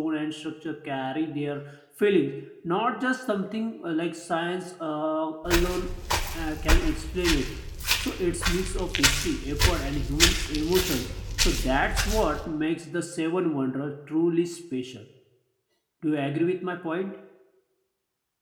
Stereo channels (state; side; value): identical; both; correlation 1.00